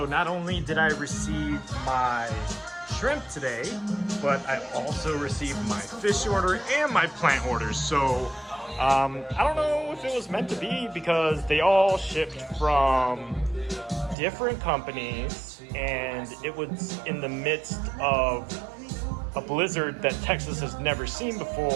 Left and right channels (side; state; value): left; drops out; at 14.2 s